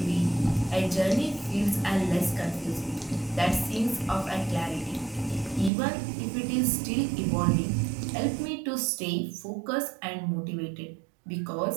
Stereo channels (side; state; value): left; drops out; at 5.7 s